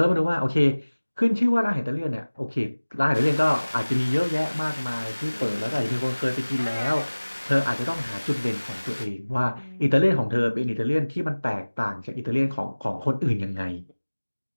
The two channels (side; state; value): both; inverted; correlation -1.00